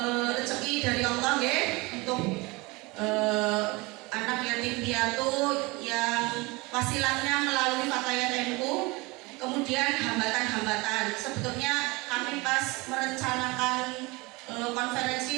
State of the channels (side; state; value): left; quieter; 24.5 dB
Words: rezeki dari Allah, ya, untuk anak yatim piatu yang wasilahnya melalui Fatayat NU. Kemudian hambatan-hambatan, sebetulnya kami pas merencanakan